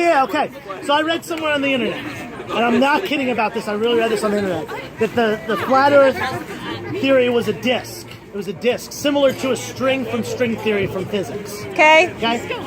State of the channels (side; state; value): both; identical; correlation 1.00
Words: okay. So I read somewhere on the internet, and I'm not kidding about this, I really read this on the internet, that the flat Earth theory was a disc. It was a disc, similar to a string from string theory from physics. Okay. Okay?